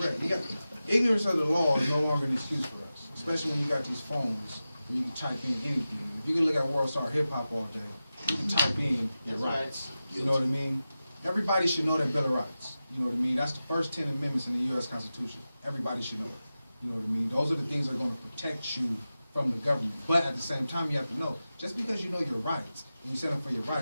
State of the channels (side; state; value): both; inverted; correlation -0.94